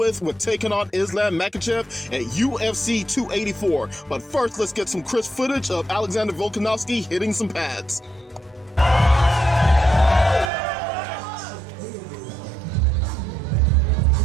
taking on Islam Makhachev at UFC 284. But first, let's get some crisp footage of Alexander Volkanovski hitting some pads.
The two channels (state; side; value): drops out; left; at 10.5 s